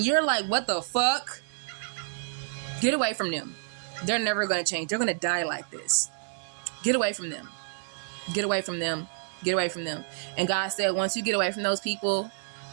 you're like, what the fuck? Get away from them. They're never going to change. They're going to die like this. Get away from them. Get away from them. Get away from them. And God said, once you get away from those people,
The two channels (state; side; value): silent; left; 58 dB below the other